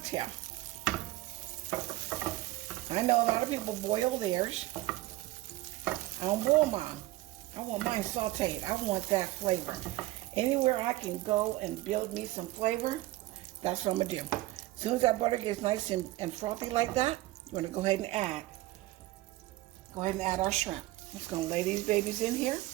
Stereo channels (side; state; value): left; quieter; 17.7 dB